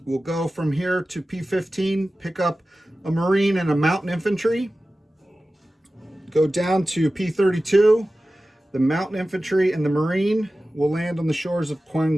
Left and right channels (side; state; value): both; normal; correlation 0.95